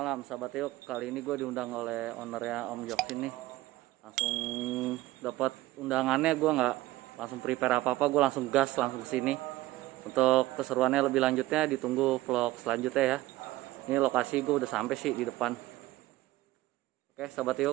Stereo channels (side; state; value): left; quieter; 17.6 dB